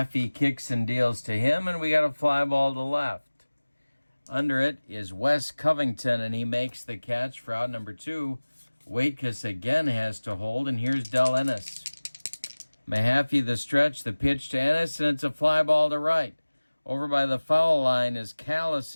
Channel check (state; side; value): inverted; both; correlation -1.00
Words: kicks and deals to him, and we got a fly ball to left. Under it is Wes Covington, and he makes the catch for out number 2. Waitkus again has to hold, and here's Del Ennis. Mahaffey the stretch, the pitch to Ennis, and it's a fly ball to right. Over by the foul line is